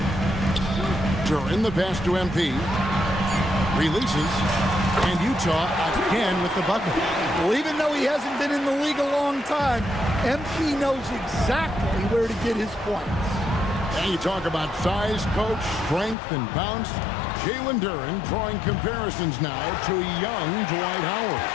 During the pass to MP. Releases. And Utah again with the bucket. Well, even though he hasn't been in the league a long time, MP knows exactly where to get his points. And you talk about size, coach, strength, and bounce. Jalen Duren drawing comparisons now to young Dwight Howard.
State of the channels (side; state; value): right; drops out; at 16.2 s